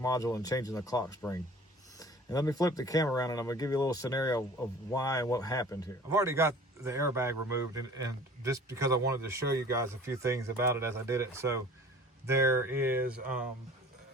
and changing the clock spring. And let me flip the camera around and I'm going to give you a little scenario of why and what happened here. I've already got the airbag removed, and just because I wanted to show you guys a few things about it as I did it. So there is on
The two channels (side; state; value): both; normal; correlation 0.47